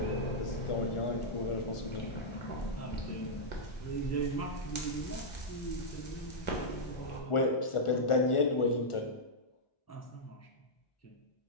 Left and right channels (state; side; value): late; right; 1.4 ms